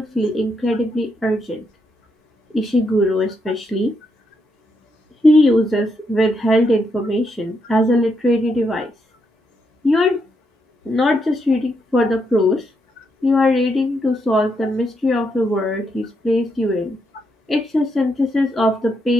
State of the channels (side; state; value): both; normal; correlation 0.79